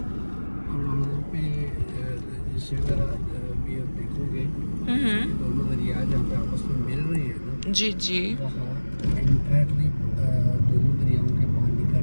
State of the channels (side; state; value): both; inverted; correlation -1.00